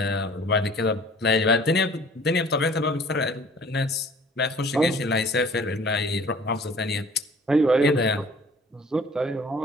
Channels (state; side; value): normal; both; correlation 0.50